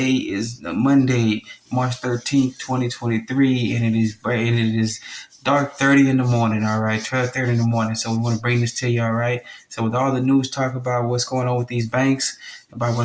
is Monday, March 13th, 2023, and it is bright and it is dark 30 in the morning, all right, 12:30 in the morning. So we want to bring this to you, all right. So with all the news talk about what's going on with these banks, about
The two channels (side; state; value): both; identical; correlation 1.00